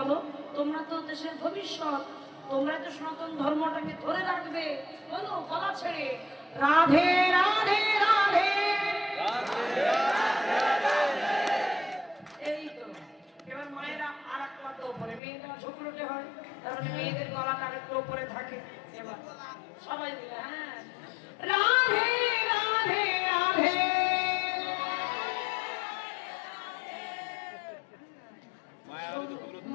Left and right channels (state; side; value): drops out; right; at 15.2 s